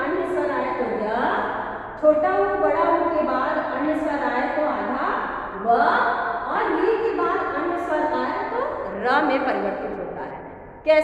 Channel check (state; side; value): identical; both; correlation 1.00